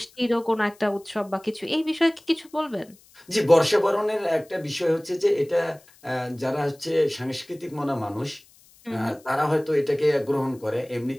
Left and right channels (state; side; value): noise; left; hiss, 28 dB below the sound